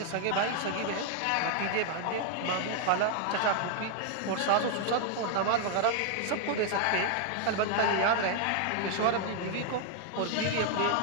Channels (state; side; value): different; both; correlation 0.00